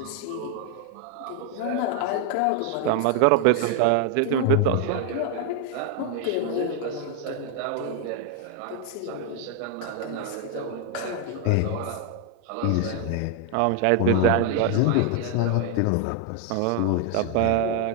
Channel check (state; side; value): different; both; correlation 0.00